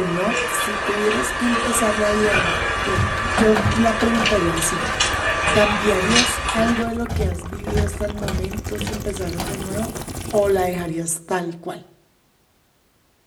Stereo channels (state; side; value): identical; both; correlation 1.00